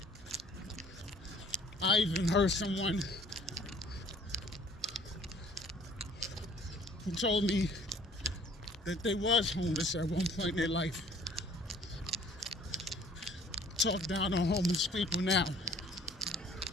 I even heard someone who told me that they was homeless at one point in their life. Talk down on homeless people now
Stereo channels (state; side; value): normal; both; correlation 0.54